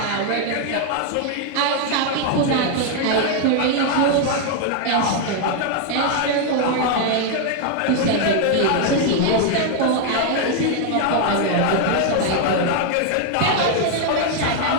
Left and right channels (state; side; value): different; both; correlation 0.00